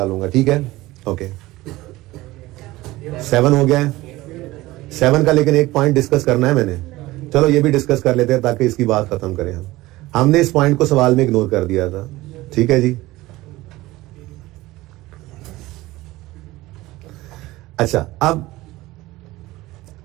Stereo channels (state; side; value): quieter; left; 18.5 dB